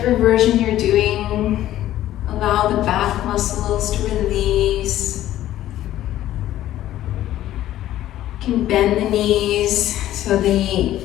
version you're doing, allow the back muscles to release. You can bend the knees, so the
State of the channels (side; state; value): right; quieter; 13.4 dB